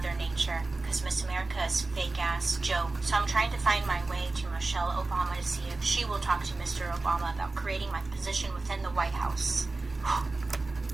Nature. Because Miss America is fake-ass joke. So I'm trying to find my way to Michelle Obama to see if she will talk to Mr. Obama about creating my position within the White House."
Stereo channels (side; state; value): left; quieter; 3.4 dB